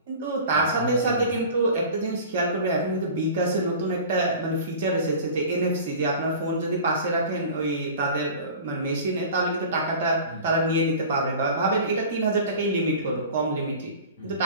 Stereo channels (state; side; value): inverted; both; correlation -0.39